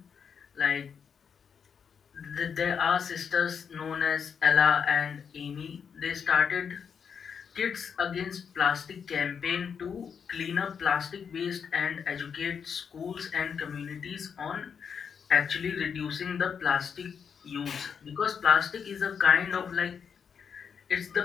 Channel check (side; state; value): right; quieter; 6.9 dB